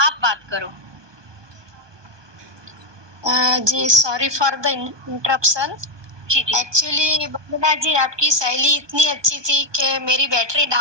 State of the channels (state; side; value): late; left; 1.2 ms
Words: बात करो। जी सॉरी फॉर द इंटरप्शन। जी जी। एक्चुअली वंदना जी आपकी शैली इतनी अच्छी थी कि मेरी बैटरी